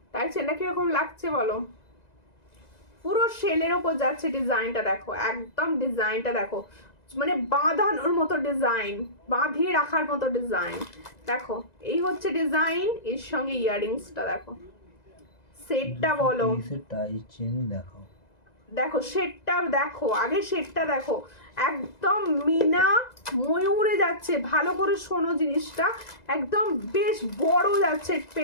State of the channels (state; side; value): late; right; 2.0 ms